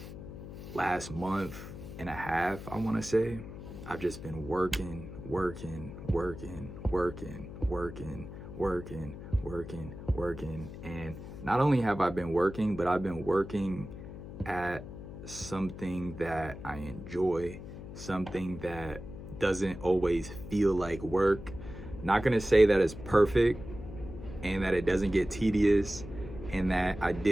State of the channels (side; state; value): left; noise; hum, 12 dB below the sound